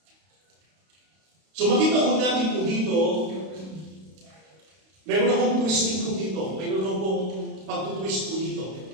So makita ko natin po dito, mayroon akong twisting ko dito, mayroon akong pag-twist po dito,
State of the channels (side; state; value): left; late; 32 ms